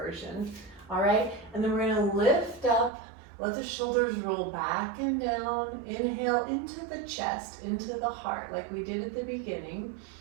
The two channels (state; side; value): drops out; left; at 2.9 s